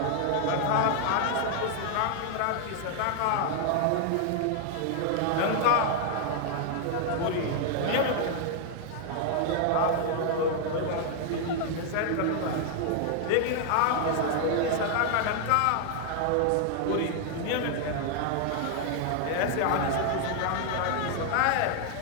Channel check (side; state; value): both; different; correlation 0.00